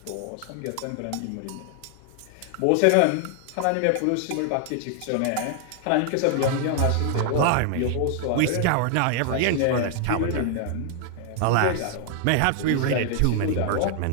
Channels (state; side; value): different; both; correlation 0.00